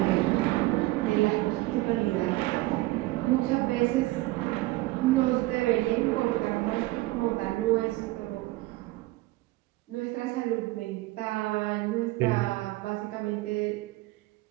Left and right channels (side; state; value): left; quieter; 19.7 dB